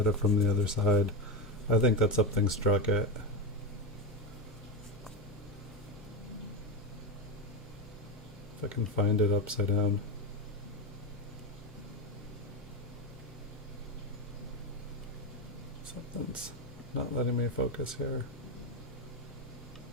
it from the other side. I think that something struck it. If I can find it upside down. Something's not letting me focus here.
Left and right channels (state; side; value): normal; both; correlation 0.14